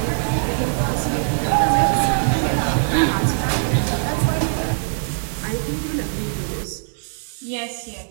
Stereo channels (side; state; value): left; silent; digital silence